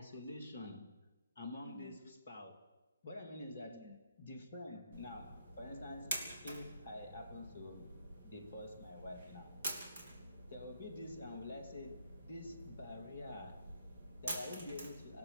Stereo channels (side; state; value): both; inverted; correlation -0.73